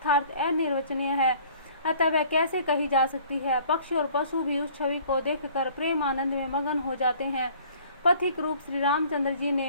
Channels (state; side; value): inverted; both; correlation -0.53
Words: अनिर्वचनीय है, अतः वह कैसे कही जा सकती है। पक्षी और पशु भी उस छवि को देखकर प्रेम आनंद में मगन हो जाते हैं। पथिक रूप श्री रामचंद्र जी